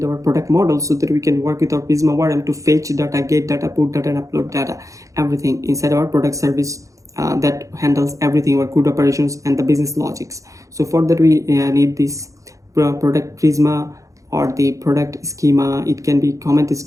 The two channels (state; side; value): late; left; 0.16 ms